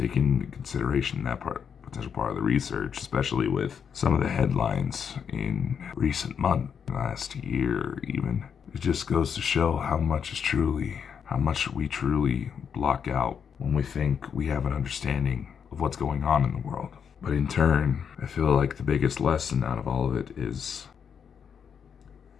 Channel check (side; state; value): right; quieter; 7.2 dB